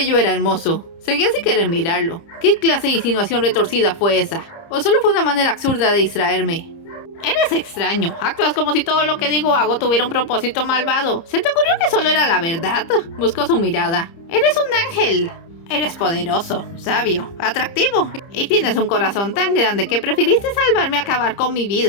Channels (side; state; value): right; late; 30 ms